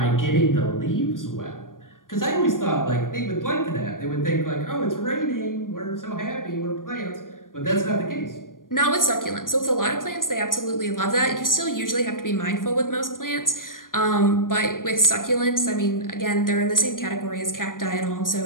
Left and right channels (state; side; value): late; right; 0.90 ms